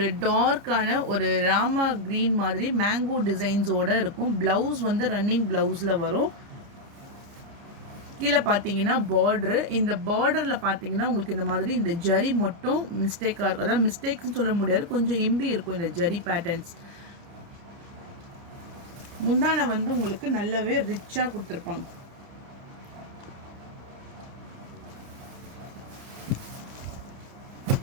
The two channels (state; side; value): late; left; 30 ms